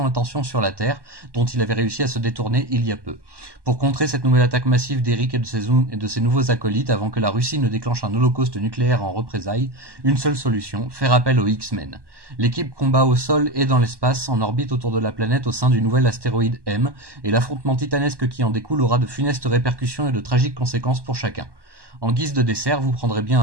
attention sur la Terre, dont il avait réussi à se détourner il y a peu. Pour contrer cette nouvelle attaque massive d'Eric et de ses nouveaux acolytes avant que la Russie ne déclenche un holocauste nucléaire en représailles, une seule solution, faire appel aux X-Men. L'équipe combat au sol et dans l'espace, en orbite autour de la planète au sein du nouvel astéroïde M, et l'affrontement titanesque qui en découle aura de funestes répercussions et de tragiques conséquences pour chacun. En guise de dessert, vous prendrez bien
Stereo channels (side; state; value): left; late; 1.1 ms